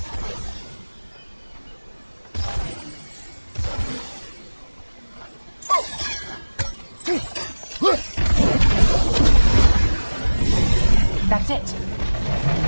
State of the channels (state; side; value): inverted; both; correlation -1.00